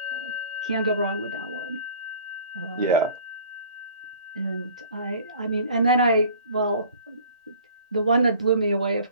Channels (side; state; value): both; inverted; correlation -0.48